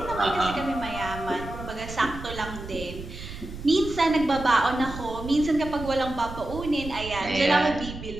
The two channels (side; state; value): right; noise; rumble, 11 dB below the sound